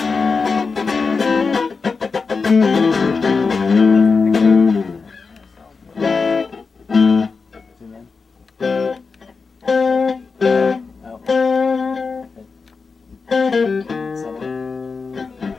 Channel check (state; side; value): quieter; right; 4.7 dB